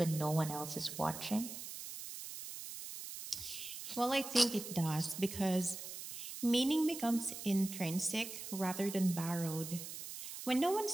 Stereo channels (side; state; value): right; noise; hiss, 9 dB below the sound